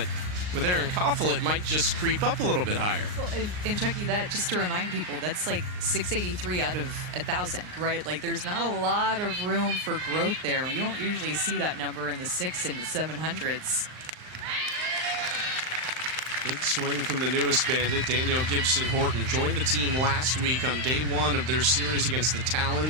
with Aaron Coffel, it might just creep up a little bit higher. Well, and Chucky, that just to remind people, that's like 683 out of 1,000, right? Like there's not a lot of room for growth there. You don't usually see that number in the 600s and 700s. Big swing from the newest Bandit, Danielle Gibson-Horton. Joined the team last week on day one of their series against the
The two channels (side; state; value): left; late; 39 ms